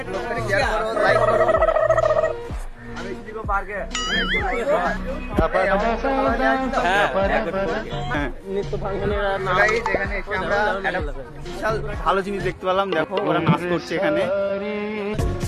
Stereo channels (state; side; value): identical; both; correlation 1.00